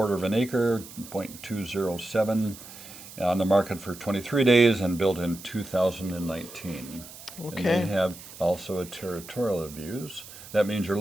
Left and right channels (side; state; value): right; noise; hiss, 16 dB below the sound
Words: of an acre, 0.207, on the market for 23 days and built in 2019. And Okay. they have also a territorial views. That means you're